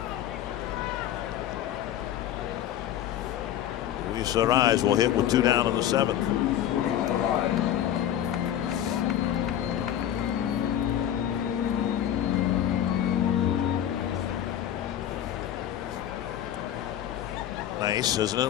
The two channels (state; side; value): quieter; right; 11.2 dB